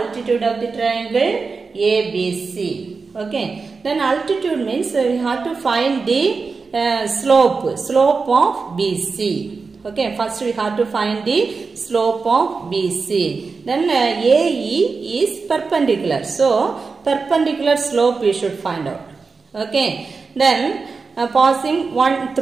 of the triangle ABC. Okay, then altitude means we have to find the slope of BC. Okay, first we have to find the slope of BC. Then AE is perpendicular. So, perpendicular slope we should find out. Okay, then passing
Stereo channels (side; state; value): left; quieter; 4.6 dB